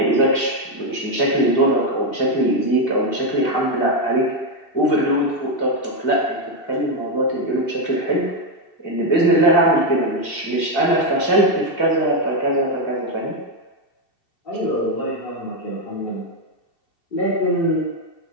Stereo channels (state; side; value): late; right; 2.7 ms